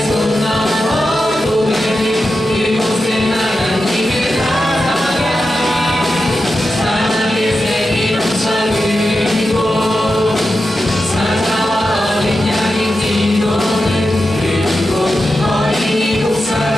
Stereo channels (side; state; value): both; normal; correlation 0.90